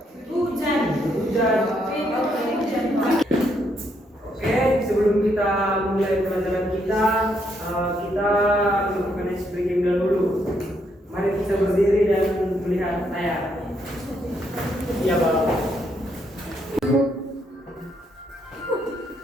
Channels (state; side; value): normal; both; correlation 0.75